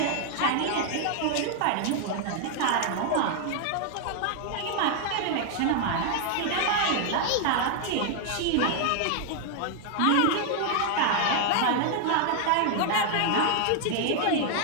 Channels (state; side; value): different; both; correlation 0.00